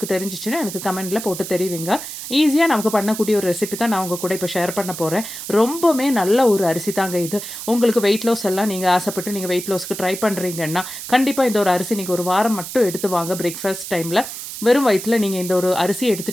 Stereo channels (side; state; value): right; noise; hiss, 9 dB below the sound